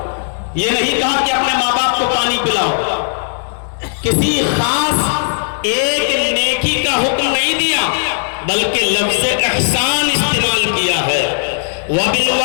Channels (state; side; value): silent; right; digital silence